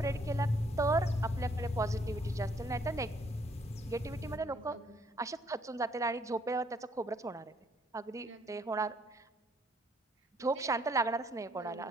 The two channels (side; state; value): both; normal; correlation 0.67